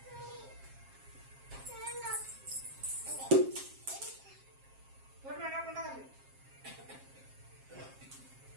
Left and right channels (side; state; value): left; late; 7.5 ms